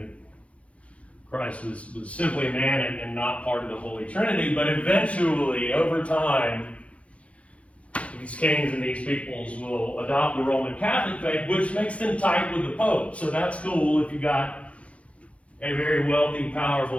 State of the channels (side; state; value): right; late; 0.063 ms